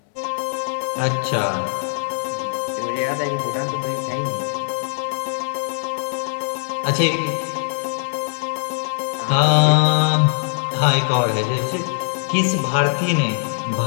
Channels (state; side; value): silent; right; digital silence